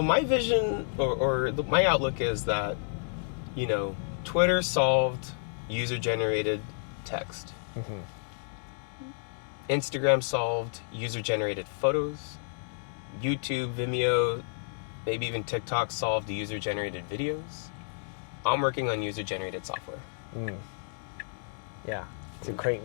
my vision my outlook is that, Twitter solved user-generated text. Instagram solved user-generated photos. YouTube, Vimeo, maybe even TikTok solved user-generated videos. I'm working on user-generated software. Yeah, to create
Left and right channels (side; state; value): right; silent; digital silence